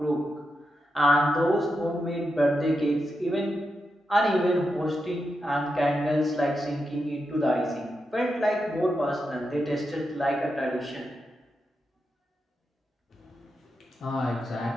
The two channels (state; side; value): normal; both; correlation 0.87